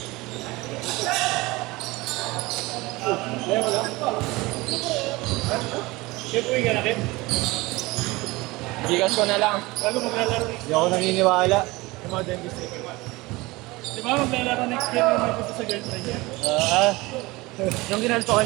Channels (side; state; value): left; quieter; 21.8 dB